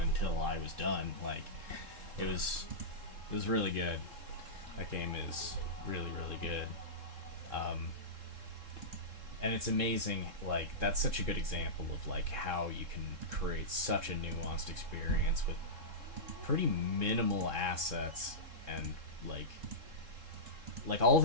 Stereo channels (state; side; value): late; left; 3.7 ms